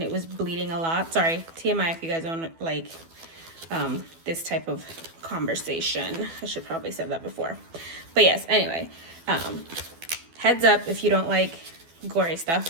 it was bleeding a lot. Sorry, TMI if you guys don't like this type of conversation. I should probably said that before. But yes, anyway, heads up if you don't like gory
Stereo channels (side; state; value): left; late; 12 ms